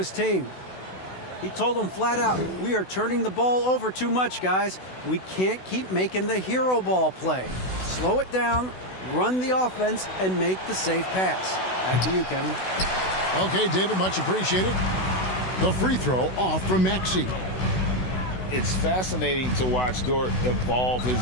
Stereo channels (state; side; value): late; right; 16 ms